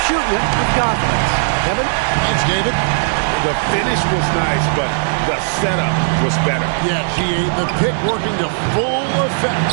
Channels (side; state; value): left; silent; 68 dB below the other